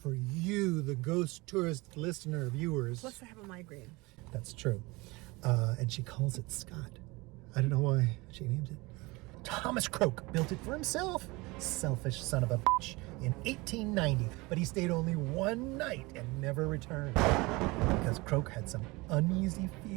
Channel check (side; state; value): left; quieter; 23.7 dB